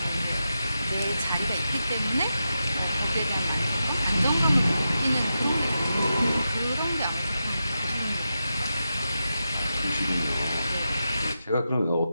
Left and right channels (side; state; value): both; inverted; correlation -0.89